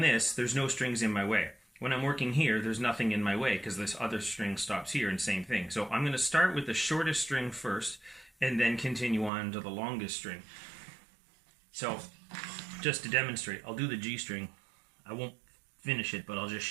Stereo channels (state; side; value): drops out; left; at 9.3 s